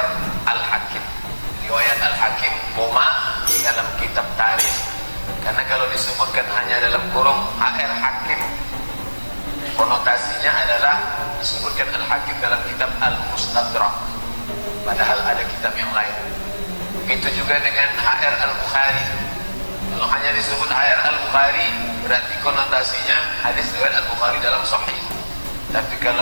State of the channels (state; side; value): inverted; both; correlation -1.00